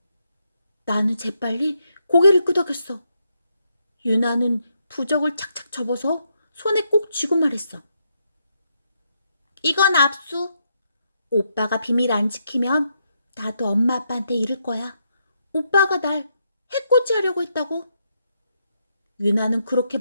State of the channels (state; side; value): inverted; both; correlation -0.79